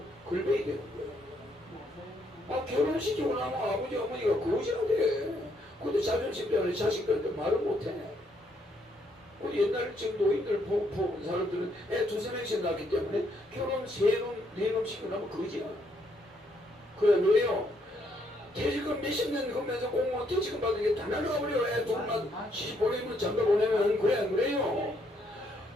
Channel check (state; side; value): normal; both; correlation 0.72